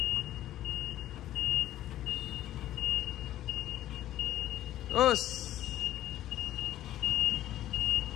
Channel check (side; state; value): right; quieter; 13.4 dB